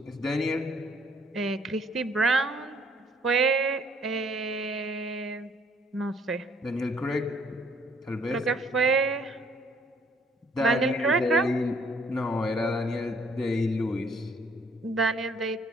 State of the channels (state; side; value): normal; both; correlation 0.62